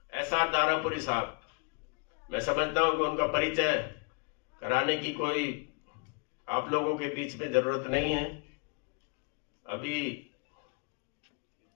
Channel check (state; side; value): quieter; right; 33.3 dB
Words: SR दारापुरी साहब, मैं समझता हूं कि उनका परिचय कराने की कोई आप लोगों के बीच में जरूरत नहीं है। अभी